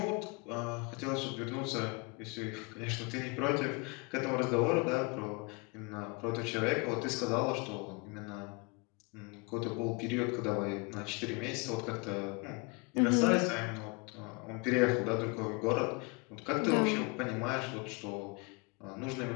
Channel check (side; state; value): right; quieter; 29.9 dB